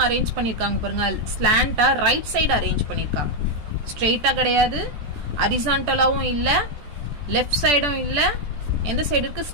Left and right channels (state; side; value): late; left; 14 ms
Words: அரேஞ்ச் பண்ணியிருக்காங்க பாருங்க, ஸ்லாண்டா ரைட் சைடு அரேஞ்ச் பண்ணியிருக்காங்க. ஸ்ட்ரெயிட்டா கிடையாது, ஹரிசான்டலாவும் இல்ல, லெஃப்ட் சைடும் இல்ல, எந்த சைடு இருக்கு,